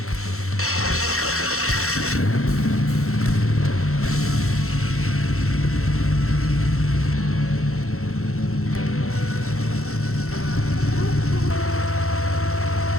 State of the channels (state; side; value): late; right; 0.63 ms